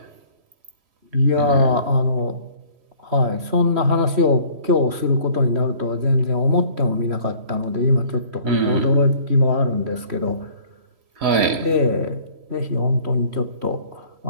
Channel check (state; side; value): late; left; 3.1 ms